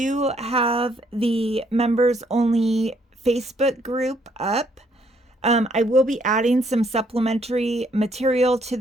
have the members only Facebook group up. I will be adding some supplementary material to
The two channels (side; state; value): both; normal; correlation 0.68